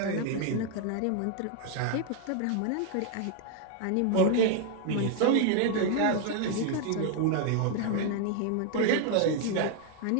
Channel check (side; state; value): both; different; correlation 0.00